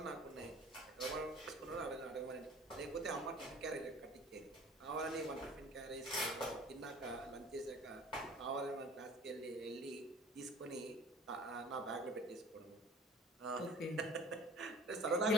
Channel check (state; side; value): normal; both; correlation 0.45